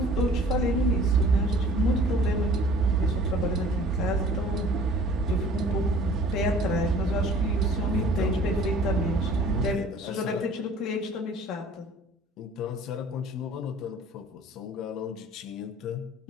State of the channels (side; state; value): both; normal; correlation 0.50